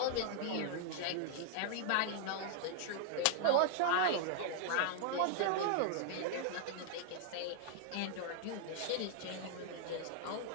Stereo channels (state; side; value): different; both; correlation 0.00